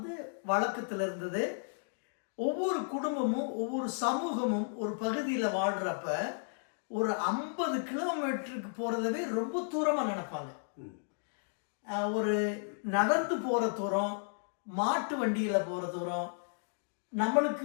வழக்கத்தில் இருந்தது. ஒவ்வொரு குடும்பமும் ஒவ்வொரு சமூகமும் ஒரு பகுதியில் வாழ்கிறப்ப ஒரு 50 கிலோமீட்டருக்கு போகிறதவே ரொம்ப தூரமாக நினைப்பாங்க. ஒரு நடந்து போகிற தூரம், மாட்டு வண்டியில் போகிற தூரம், நம்மளுக்கு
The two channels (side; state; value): right; silent; digital silence